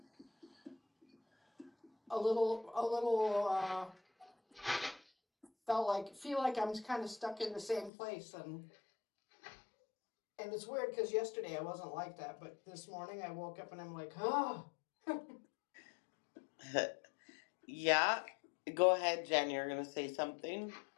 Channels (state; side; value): drops out; right; at 7.9 s